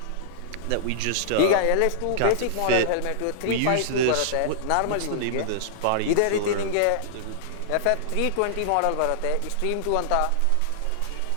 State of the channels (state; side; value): different; both; correlation -0.01